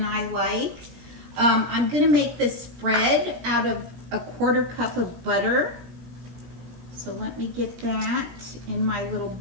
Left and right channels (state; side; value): late; left; 17 ms